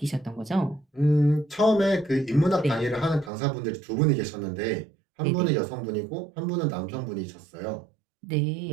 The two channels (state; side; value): drops out; left; at 3.3 s